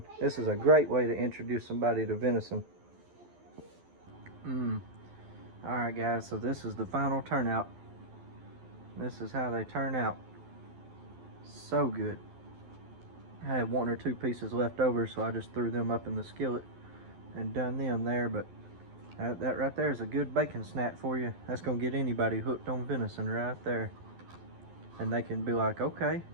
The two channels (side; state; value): left; late; 12 ms